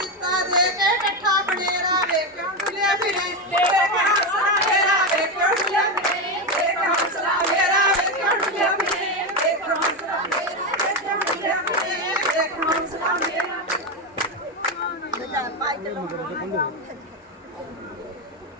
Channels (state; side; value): normal; both; correlation 0.12